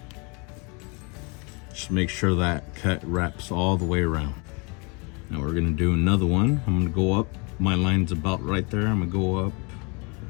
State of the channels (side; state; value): right; quieter; 31.5 dB